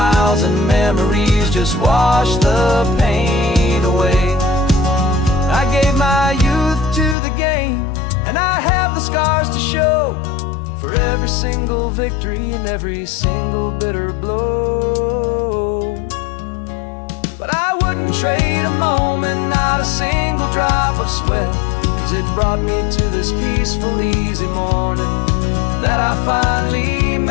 and memories just wash the pain away. I gave my youth to the game, and I have the scars to show for every single victory and every single bitter blow. But I wouldn't trade a moment, not a single drop of sweat, 'cause it brought me to this peaceful, easy morning that I finally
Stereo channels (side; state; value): right; drops out; at 7.2 s